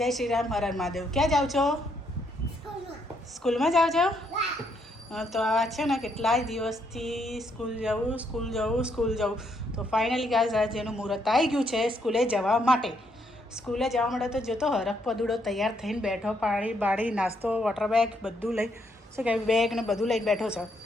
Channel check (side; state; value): both; normal; correlation 0.74